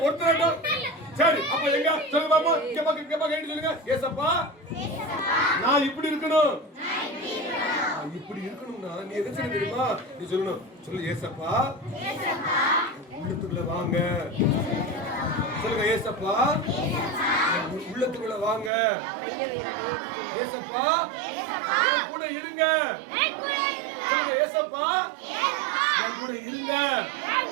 ஒருத்தராட்டம். சரி அப்ப எங்க சொல்லுங்க பாப்பா. கேப்பா கேட்டு சொல்லுங்க. ஏசப்பா நான் இப்படி இருக்கணும். இப்படி இருக்கணும்னா நீ எதை செய்ய தெரியுமா? நீ சொல்லணும். சொல்லு, ஏசப்பா உள்ளத்துக்குள்ள வாங்க. சொல்லுங்க, ஏசப்பா உள்ளத்துக்குள்ள வாங்க. ஏசப்பா கூட இருங்க. சொல்லுங்க, ஏசப்பா என் கூட இருங்க.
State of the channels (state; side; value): drops out; left; at 18.7 s